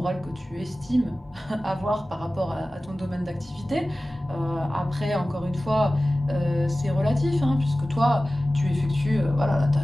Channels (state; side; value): normal; both; correlation 0.96